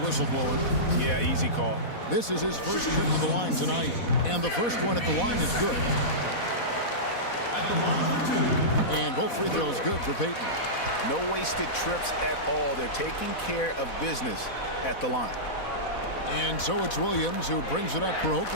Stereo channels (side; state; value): right; late; 4.1 ms